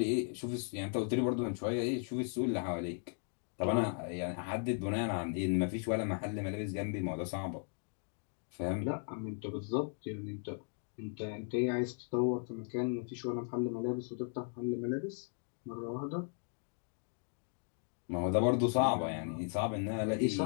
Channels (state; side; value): silent; right; 53 dB below the other